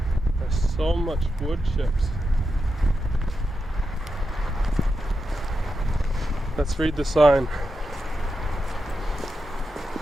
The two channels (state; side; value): normal; both; correlation 0.88